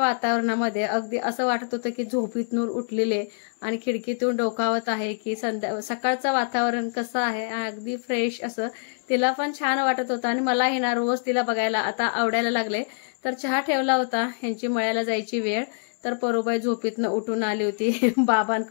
अगदी असं वाटत होतं की झोपीतून उठलेले आणि खिडकीतून डोकावत आहे की सकाळचं वातावरण कसं आहे, अगदी फ्रेश असं तिला पण छान वाटत होतं. आणि मलाही ना रोज तिला बघायला आता आवडायला लागले. तर चहा ठेवला होता, ह्यांची मळ्याला जायची वेळ, तर परूबाई झोपीतनं उठून आली होती.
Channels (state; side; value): silent; right; digital silence